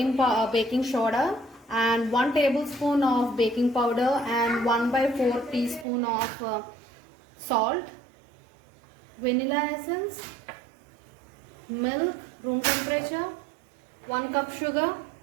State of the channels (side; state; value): left; drops out; at 5.9 s